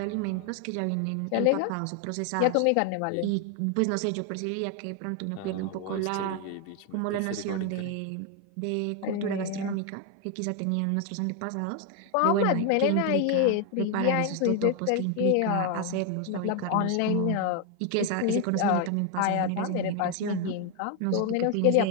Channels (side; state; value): both; different; correlation 0.01